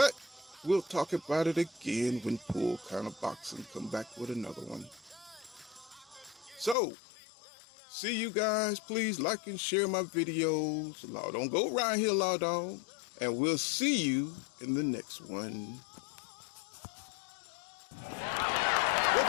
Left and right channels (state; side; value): drops out; right; at 6.8 s